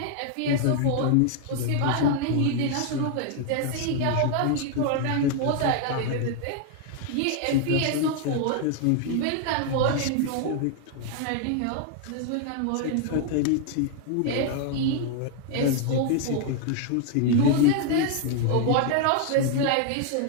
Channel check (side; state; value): both; different; correlation 0.00